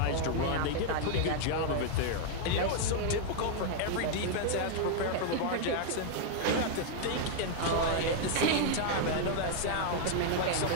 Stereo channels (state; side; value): different; both; correlation 0.00